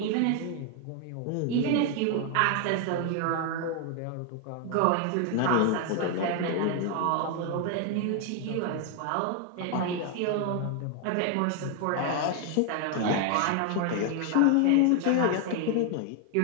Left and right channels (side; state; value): both; different; correlation 0.01